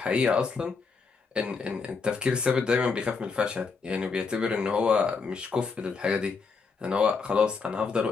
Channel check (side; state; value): right; quieter; 4.9 dB